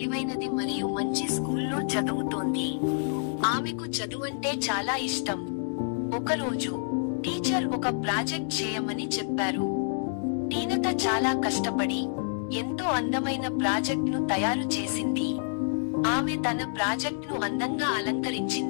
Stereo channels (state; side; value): silent; right; digital silence